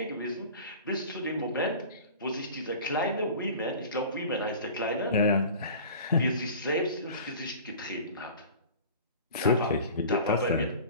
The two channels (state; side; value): inverted; both; correlation -0.40